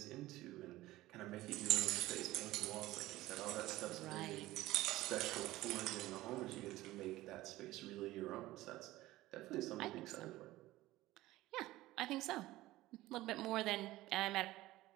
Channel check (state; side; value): quieter; left; 17.0 dB